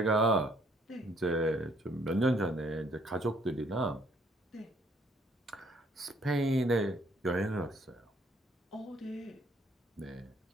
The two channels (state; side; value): normal; both; correlation 0.64